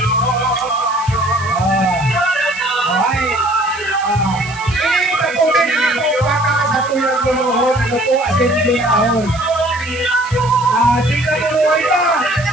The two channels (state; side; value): noise; right; hiss, 17 dB below the sound